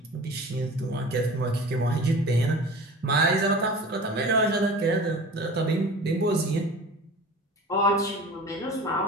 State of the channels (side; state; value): both; normal; correlation 0.38